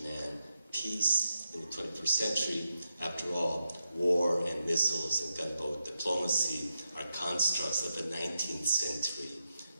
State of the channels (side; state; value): both; inverted; correlation -0.86